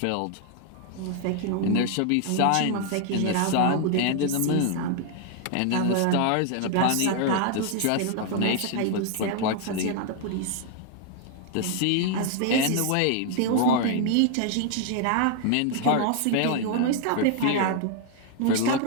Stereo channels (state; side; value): different; both; correlation 0.00